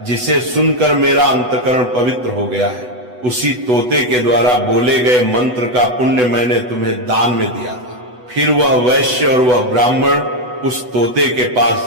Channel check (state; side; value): late; left; 8.1 ms